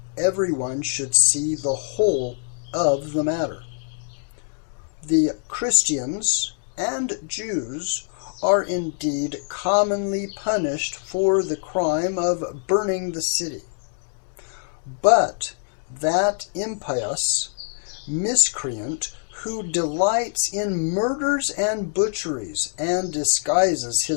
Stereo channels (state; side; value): silent; right; digital silence